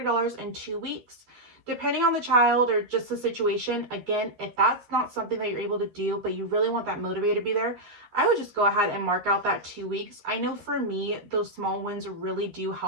in 2 weeks. Depending on the child or just the situation, again, if that's not something that you're able to do, but you really want that motivator to be there, I would just go ahead and mark out that 2 weeks. I know for me, those small wins really do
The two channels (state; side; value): late; left; 12 ms